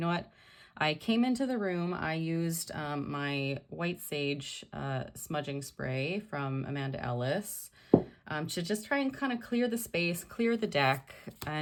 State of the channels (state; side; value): identical; both; correlation 1.00